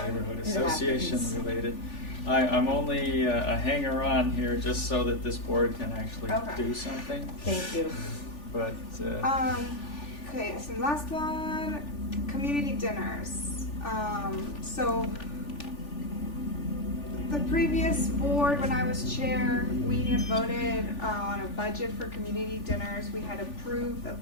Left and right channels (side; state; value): right; late; 3.4 ms